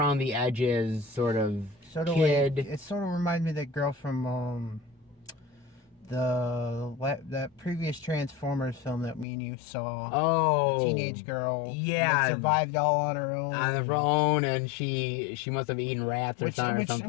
the edges sort of kid. It sort of reminds me of that girl from that previous Transformers film that me and you saw. Oh, the teenage girl. Yeah, that survived all on her own. And she must have eaten rats or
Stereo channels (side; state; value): right; drops out; at 9.2 s